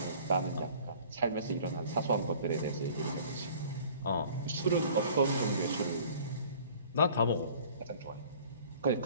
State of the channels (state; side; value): inverted; both; correlation -0.50